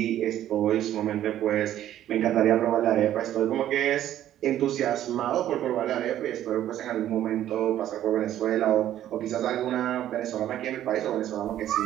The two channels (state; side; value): quieter; left; 12.1 dB